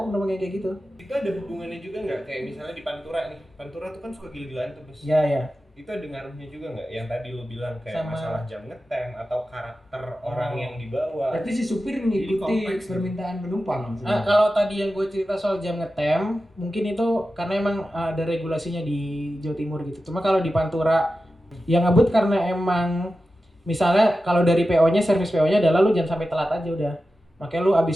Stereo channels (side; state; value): both; normal; correlation 0.93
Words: penumpang yang kayak gitu. Itu ada hubungannya juga nggak? Kayak misalnya di Pantura nih. Pantura tuh kan suka gila-gilaan tuh bus. Ya ya. Itu ada ngaruhnya juga nggak? Yang tadi lu bilang kayak Sama- masalah jam ngetem atau karakter orang yang dibawa. Berarti si supir Jadi mengikuti kompleks. permintaan penumpang. Nah, kalau tadi yang gue cerita soal jam ngetem, mungkin itu karena emang ada regulasinya di Jawa Timur gitu. Cuma kalau di Pantura yang ngebut karena emang misalnya kalau dari PO-nya, servis PO-nya adalah lu jangan sampai telat aja udah. Makanya lu abis